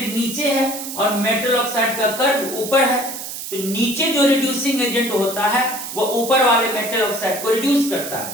नीचे है और मेटल ऑक्साइड का कर्व ऊपर है। तो नीचे जो रिड्यूसिंग एजेंट होता है वो ऊपर वाले मेटल ऑक्साइड को रिड्यूस करता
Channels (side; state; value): right; noise; hiss, 8 dB below the sound